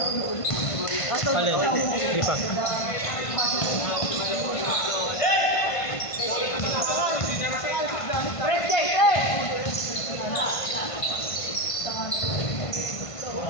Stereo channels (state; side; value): late; right; 1.5 ms